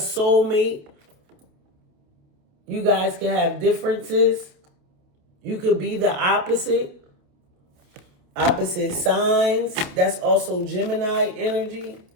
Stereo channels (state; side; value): late; left; 28 ms